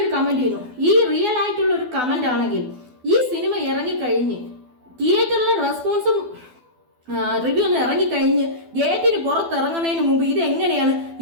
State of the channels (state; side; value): late; left; 12 ms